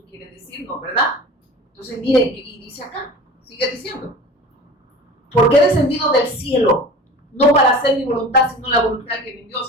quiere decirnos, ¿verdad? Entonces, mire, y dice acá, sigue diciendo. Porque he descendido del cielo, no para hacer mi voluntad, sino la voluntad que me envió. O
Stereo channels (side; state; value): both; normal; correlation 0.38